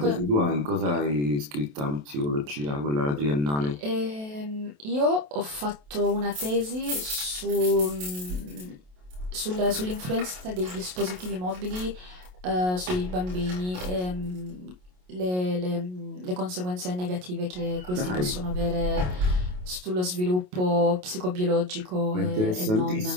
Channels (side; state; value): left; late; 27 ms